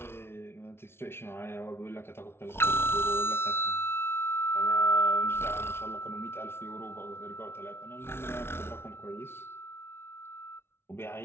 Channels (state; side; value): late; right; 0.12 ms